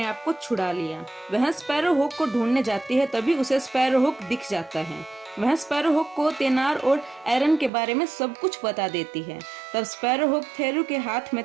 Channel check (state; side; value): drops out; left; at 7.7 s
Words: आप को छुड़ा लिया। वह स्पैरोहुक को ढूंढने जाती है, तभी उसे स्पैरोहुक दिख जाता है। वह स्पैरोहुक को तेनार और एरन के बारे में सब कुछ बता देती है। तब स्पैरोहुक थेरू के हाथ में